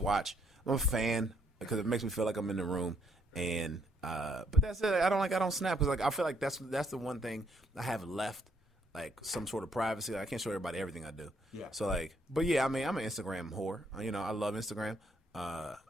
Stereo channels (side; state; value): both; normal; correlation 0.70